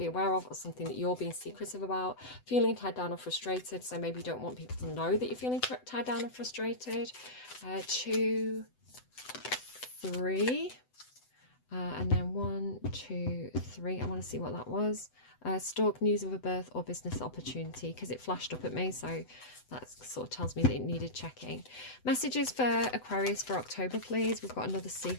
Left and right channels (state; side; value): late; right; 7.9 ms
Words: aware of or something that you're being secretive about. Feeling tied down or frustrated. So maybe you don't want people to know that you're feeling tied down or frustrated. 2, 3. And then 1, 2, 3. I want to see what that was. Stalk, news of a birth or business opportunity, because it flashed up at me, so that sort of tells me that it needed checking. Messages for Aquarius for October, please. We've got another